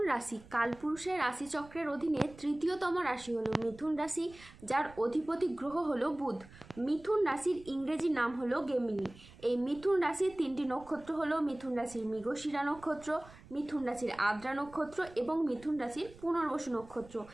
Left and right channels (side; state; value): right; noise; rumble, 21 dB below the sound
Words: রাশি কালপুরুষের রাশিচক্রের অধীনে তৃতীয়তম রাশি হলো মিথুন রাশি, যার অধিপতি গ্রহ হলো বুধ। মিথুন রাশির ইংরেজি নাম হলো গেমিনি। এই মিথুন রাশির তিনটি নক্ষত্র হলো মিথুন রাশির মৃগশিরা নক্ষত্র, মিথুন রাশির আদ্রা নক্ষত্র এবং মিথুন রাশির পুনর্বসু নক্ষত্র।